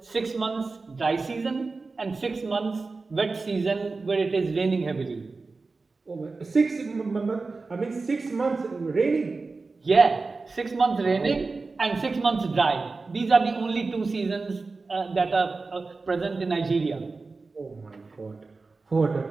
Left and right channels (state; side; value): quieter; left; 3.9 dB